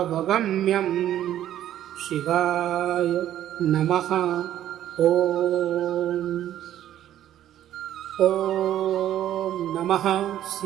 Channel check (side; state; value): left; quieter; 11.9 dB